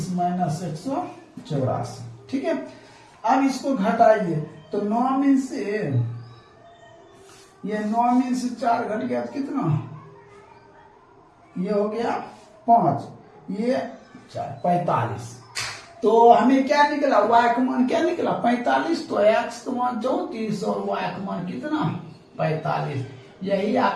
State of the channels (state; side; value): identical; both; correlation 1.00